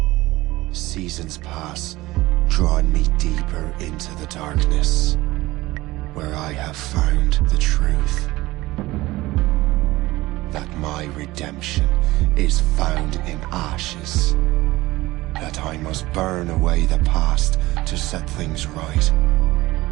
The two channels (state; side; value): quieter; left; 18.9 dB